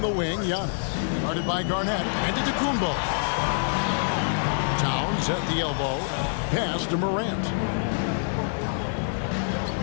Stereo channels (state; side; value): silent; right; 61 dB below the other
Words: the wing, Giannis. Guarded by Garnett. Antetokounmpo. Towns at the elbow. Pass to Morant.